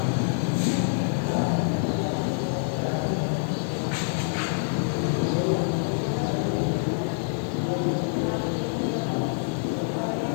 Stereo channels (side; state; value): right; silent; 59 dB below the other